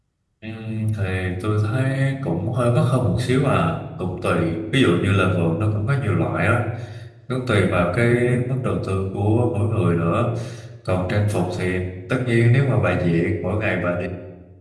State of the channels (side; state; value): both; identical; correlation 1.00